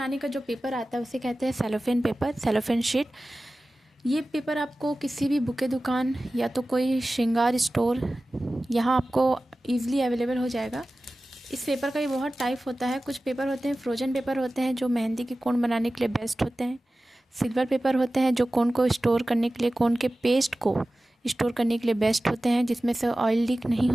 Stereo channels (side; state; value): both; normal; correlation 0.96